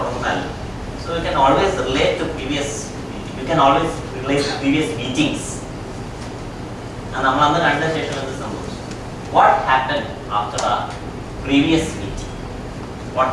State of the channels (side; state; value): both; identical; correlation 1.00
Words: So you can always relate to previous. You can always relate to previous meetings. And what happened after our previous meeting? What